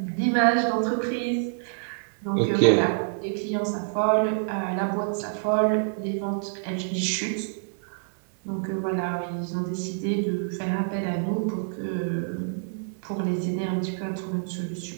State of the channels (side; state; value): left; silent; digital silence